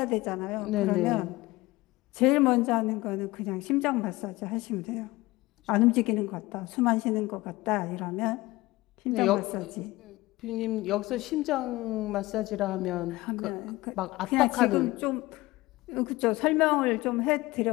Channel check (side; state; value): right; quieter; 19.7 dB